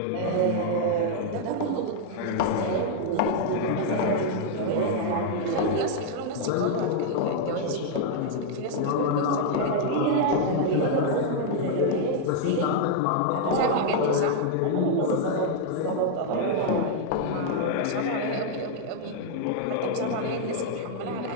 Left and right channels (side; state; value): both; different; correlation 0.00